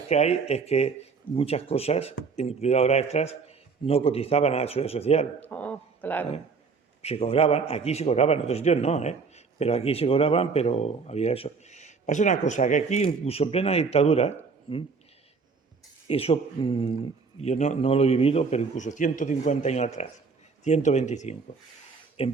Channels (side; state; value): left; quieter; 4.9 dB